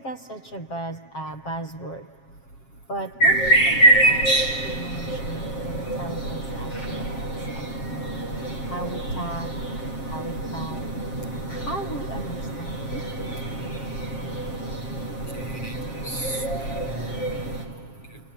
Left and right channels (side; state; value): right; late; 7.4 ms